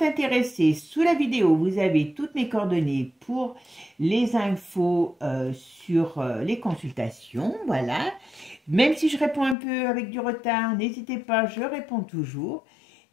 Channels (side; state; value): right; drops out; at 9.6 s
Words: intéressés, sous la vidéo, vous avez toutes mes coordonnées pour les infos sur les consultations, voilà. Même si je réponds un peu avec du retard, n'hésitez pas, je réponds toujours.